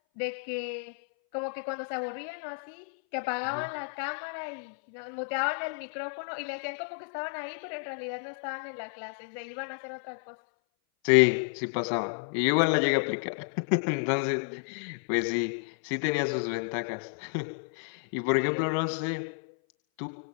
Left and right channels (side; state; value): right; silent; 57 dB below the other